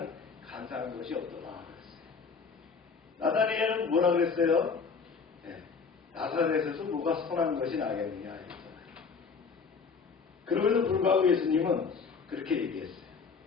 간사한 것이 없더라 그랬어요. 나다니엘은 뭐라 그랬어요? 네, 나사렛에서 뭐가 선한 것이 나겠느냐 했잖아요. 그럼에도 불구하고 예수님은 그렇게 얘기했어요.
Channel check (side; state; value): right; quieter; 5.3 dB